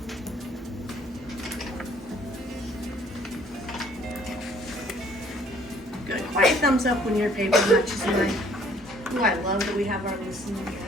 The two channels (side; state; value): both; normal; correlation 0.59